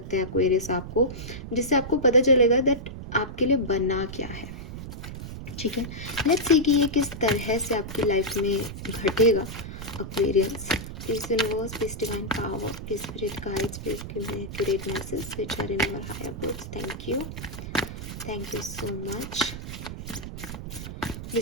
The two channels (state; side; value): noise; right; rumble, 9 dB below the sound